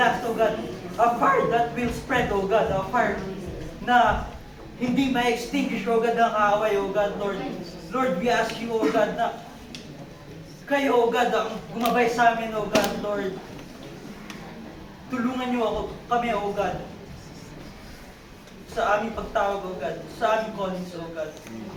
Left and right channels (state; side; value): identical; both; correlation 1.00